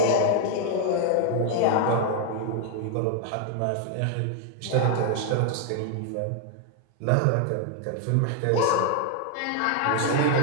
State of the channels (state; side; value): different; both; correlation 0.00